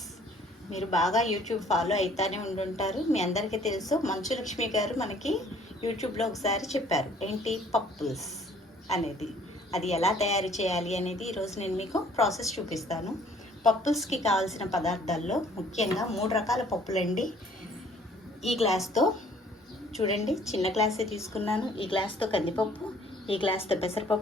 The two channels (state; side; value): normal; both; correlation 0.58